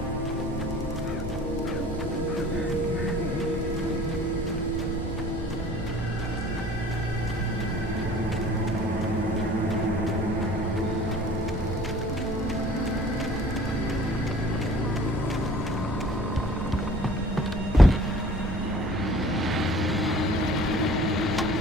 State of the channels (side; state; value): both; normal; correlation 0.49